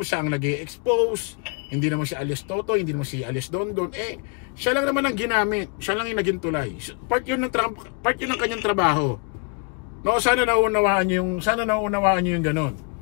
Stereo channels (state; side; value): quieter; right; 35.9 dB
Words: siya ang nag-i-expose. Hindi naman si Alias Totoy, hindi naman si Alias Dondon. Siya lang naman ang ginamit, siya lang yung naging tulay. Part yun ng kanyang trabaho. No, sana nauunawaan niyo yung ganun.